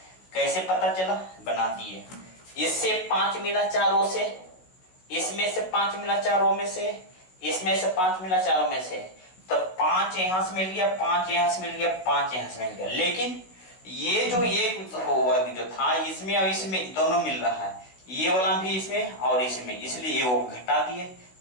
कैसे पता चला, बना दिए। इससे 5 मिला चारों से, इसमें से 5 मिला चारों में से, इसमें से 5 मिला चारों में से, तो 5 यहां से मिल गया, 5 यहां से मिल गया, 5 यहां से मिल गया। लेकिन ये जो वर्ग जो था इसमें और इसमें दोनों मिल रहा है, ये वाला भी इसमें और इसमें, इसलिए ये वो घटा दिए।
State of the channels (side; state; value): right; late; 16 ms